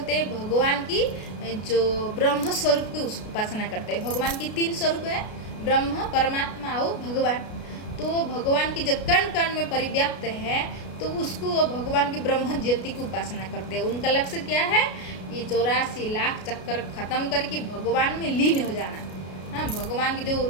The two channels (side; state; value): right; late; 33 ms